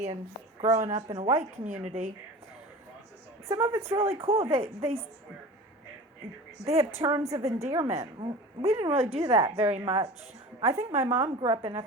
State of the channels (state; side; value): normal; both; correlation 0.36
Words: and growing up in a white community. Some of it's really cool. They have terms of endearment. We didn't really do that very much. I think my mom grew up in a